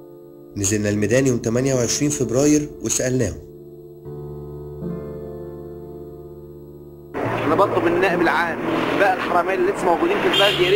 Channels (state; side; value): identical; both; correlation 1.00